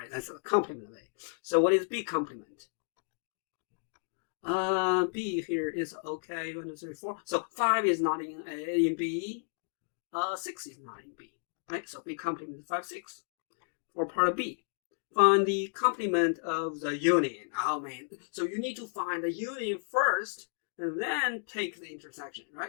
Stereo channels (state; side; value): silent; right; digital silence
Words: That's the complement of A. So what is B complement? B here is okay. 1, 2, 3, 4. So 5 is not in A in B. 6 is not in B. Right? So B complement is 5, 6. For part B, find the complement of the union. Oh man! So you need to find the union first, and then take the intersection.